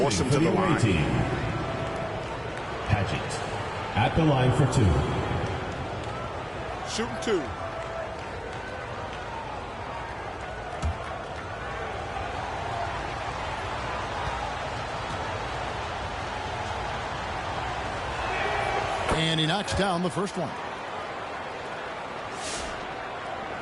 him to the line. Padgett at the line for 2. Shooting 2. And he knocks down the first one.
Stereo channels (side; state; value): both; identical; correlation 1.00